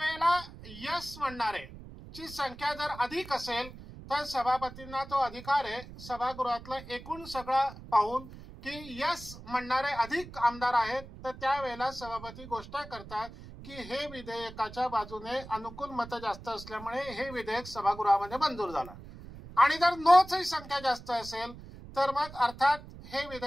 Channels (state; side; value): noise; right; rumble, 15 dB below the sound